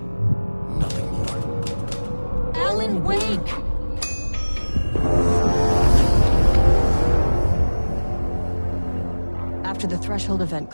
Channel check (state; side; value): inverted; both; correlation -1.00